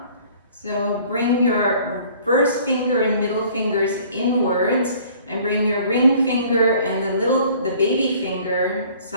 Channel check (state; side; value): inverted; both; correlation -0.53